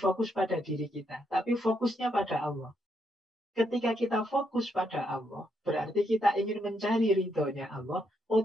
pada diri kita, tapi fokusnya pada Allah. Ketika kita fokus pada Allah, berarti kita ingin mencari ridhonya Allah,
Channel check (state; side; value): normal; both; correlation 0.77